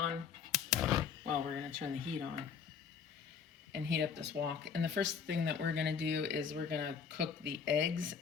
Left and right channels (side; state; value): right; quieter; 6.5 dB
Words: Well, we're gonna turn the heat on and heat up this wok. And the first thing that we're gonna do is we're gonna cook the eggs